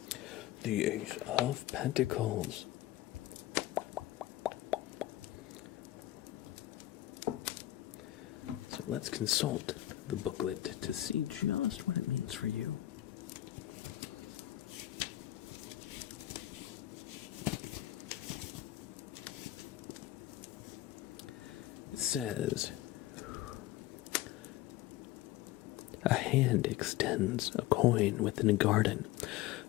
The Ace of Pentacles. So let's consult the booklet to see just what it means for you. It says, a hand extends a coin within a garden,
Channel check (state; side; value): quieter; right; 15.3 dB